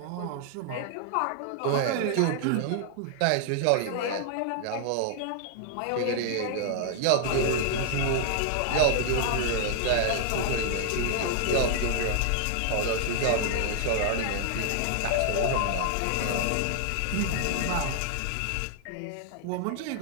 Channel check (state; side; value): different; both; correlation 0.00